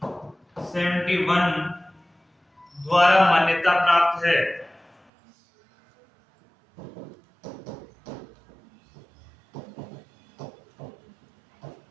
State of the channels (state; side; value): drops out; left; at 5.0 s